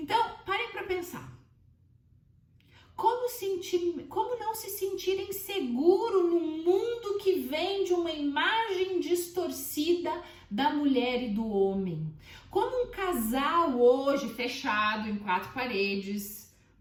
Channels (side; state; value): both; identical; correlation 1.00